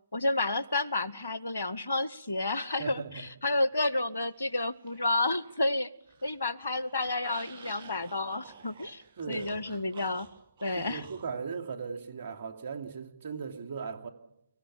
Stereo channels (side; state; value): both; inverted; correlation -0.77